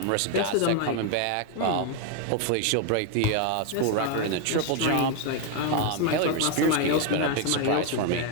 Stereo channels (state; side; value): different; both; correlation 0.01